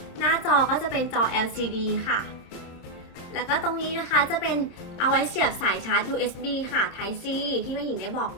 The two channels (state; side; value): late; right; 27 ms